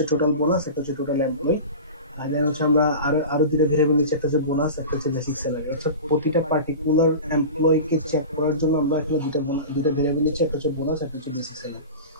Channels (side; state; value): both; inverted; correlation -0.32